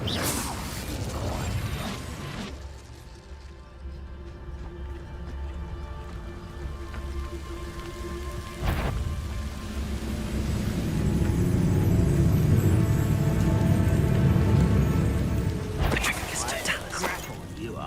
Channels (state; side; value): identical; both; correlation 1.00